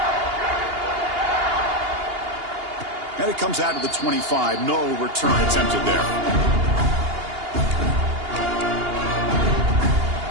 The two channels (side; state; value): left; late; 2.8 ms